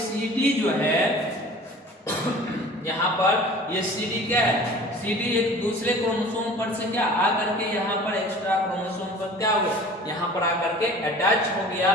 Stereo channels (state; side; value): normal; both; correlation 0.44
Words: जो है यहाँ पर ये CD क्या है, CD एक दूसरे क्रोमोसोम पर से क्या आकर के यहाँ पर एक्स्ट्रा क्रोमोसोम पर क्या हो गया, यहाँ पर आकर के अटैच हो गया,